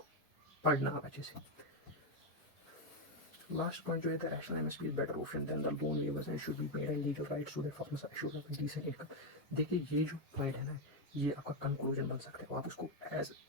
पढ़ना आप अच्छे से। लास्ट पॉइंट जो है, the rational MSP is better option than the loan waivers and should be made and legal rights to the farmers assured of decent income. देखिए ये जो पॉइंट है ना, ये आपका कंक्लूजन बन सकता है, आप उसको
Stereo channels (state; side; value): normal; both; correlation 0.05